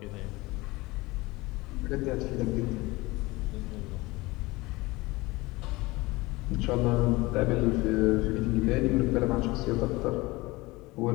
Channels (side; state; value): right; quieter; 21.8 dB